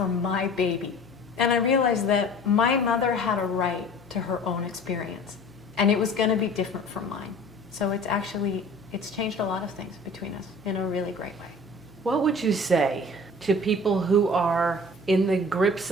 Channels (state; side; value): normal; both; correlation 0.44